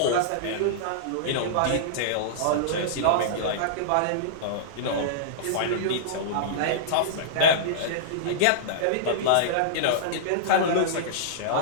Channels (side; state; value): both; different; correlation -0.03